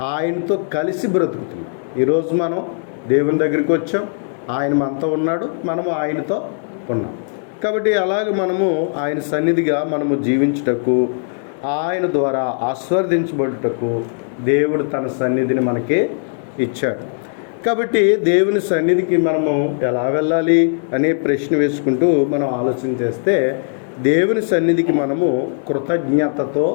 ఆయనతో కలిసి బ్రతుకుతున్నాం. ఈరోజు మనం దేవుని దగ్గరికి వచ్చాం, ఆయన మనతో ఉన్నాడు, మనము ఆయనతో ఉన్నాం. కాబట్టి అలాగే మనము ఆయన సన్నిధిగా మనము జీవించుటకు, ఆయన ద్వారా ఆశీర్వదించబడుటకు దేవుడు తన సన్నిధిని మనకి ఇచ్చాడు. కాబట్టి దేవుని సన్నిధికి మనము ఎలా వెళ్ళాలి అనే ప్రశ్న వేసుకుంటూ మనం ఆలోచన చేస్తే, దేవుని సన్నిధికి మనము కృతజ్ఞతతో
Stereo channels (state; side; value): silent; right; 67 dB below the other